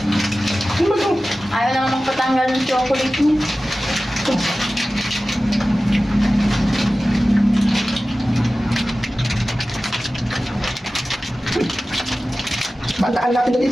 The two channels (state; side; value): normal; both; correlation 0.96